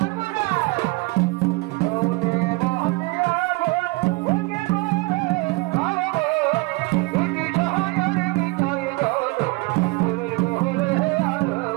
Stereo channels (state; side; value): quieter; left; 24.4 dB